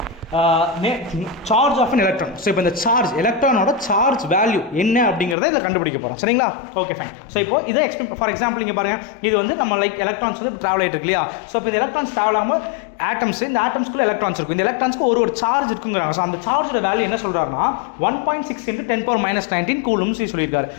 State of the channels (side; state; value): right; drops out; at 5.4 s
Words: charge of an electron. So இப்போ இந்த சார்ஜ் எலக்ட்ரானோட சார்ஜ் வேல்யூ என்ன அப்படிங்கிறத இதில் கண்டுபிடிக்க போகிறோம் சரிங்களா. Okay fine. ஸோ இப்போ இதை ஃபார் எக்ஸாம்பிள் இங்கே பாருங்கள், இது வந்து நம்ம லைக் எலக்ட்ரான்ஸ் வந்து ட்ராவல் ஆகிட்டு இருக்கு இல்லையா. ஸோ இப்போ இந்த எலக்ட்ரான்ஸ் ட்ராவல் ஆகாமல் ஆட்டம்ஸ், இந்த ஆட்டம்ஸ்க்குள்ள எலக்ட்ரான்ஸ் இருக்கும். இந்த எலக்ட்ரான்ஸ்க்கு ஒரு சார்ஜ் இருக்குங்கிறாங்க. ஸோ அந்த சார்ஜோட வேல்யூ என்ன சொல்கிறாருன்னா 1.6 × 10⁻−19 கூலும்ஸ் சொல்லியிருக்காரு.